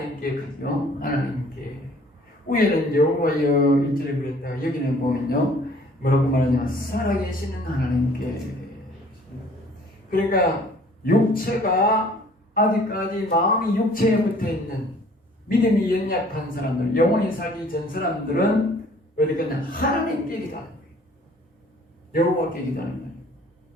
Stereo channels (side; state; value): both; normal; correlation 0.55